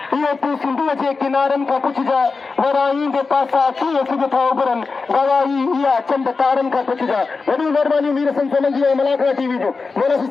इहो तूं सिंधूअ जे किनारनि खां पुछजां वराई जे पासा कीअं सिज था उभरनि गवाही इहा चंद तारनि खां पुछजां वॾी महिरबानी मीर सन सोलंकी ऐं मलाकरा टीवी जो मौला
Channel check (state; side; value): quieter; right; 4.3 dB